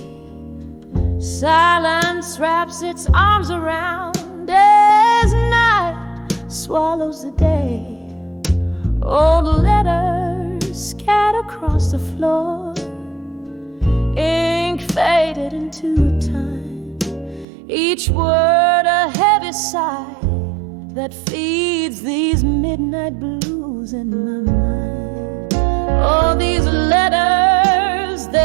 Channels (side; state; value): left; drops out; at 17.4 s